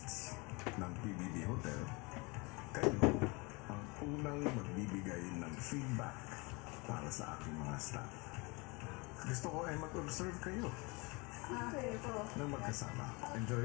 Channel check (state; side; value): quieter; right; 27.6 dB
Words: ng PBB Hotel, kayo ang unang magbibigay ng feedback para sa aking mga staff. Gusto ko ay mag-observe kayo Okay po. ng magkasama. Enjoy